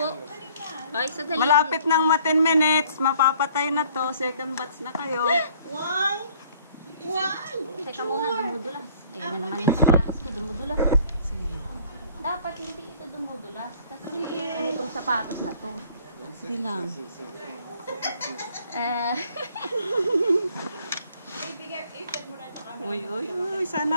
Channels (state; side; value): inverted; both; correlation -0.57